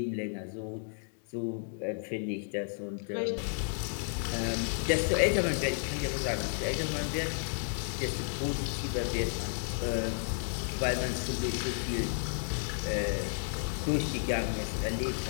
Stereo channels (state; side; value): silent; right; digital silence